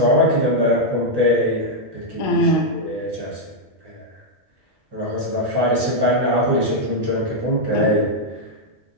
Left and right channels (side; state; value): both; normal; correlation -0.03